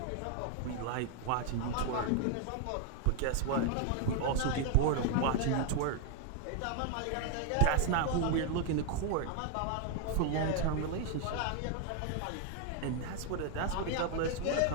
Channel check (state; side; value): different; both; correlation 0.00